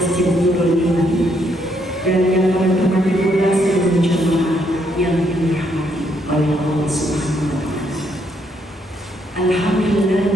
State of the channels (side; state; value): both; normal; correlation 0.73